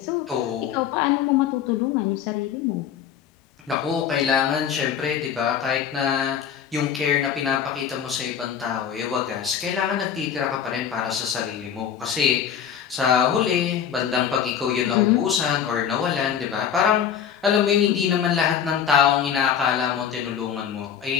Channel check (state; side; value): quieter; right; 8.5 dB